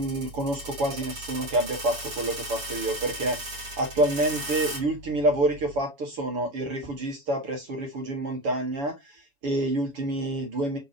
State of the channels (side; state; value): left; late; 7.1 ms